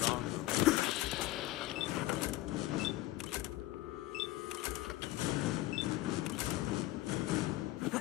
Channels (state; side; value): quieter; right; 17.0 dB